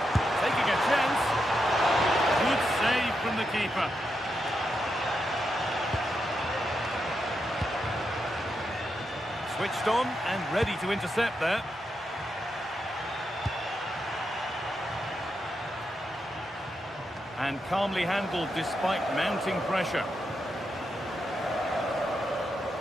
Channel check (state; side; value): normal; both; correlation 0.84